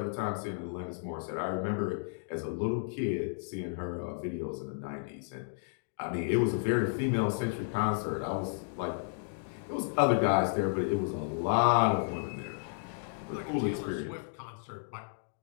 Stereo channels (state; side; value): silent; right; digital silence